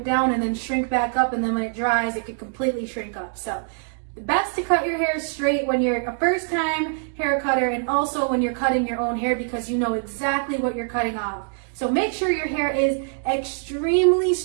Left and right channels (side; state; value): left; silent; digital silence